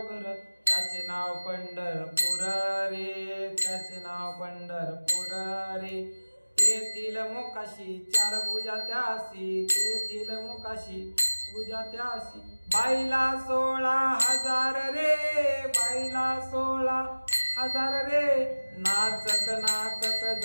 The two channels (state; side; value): inverted; both; correlation -1.00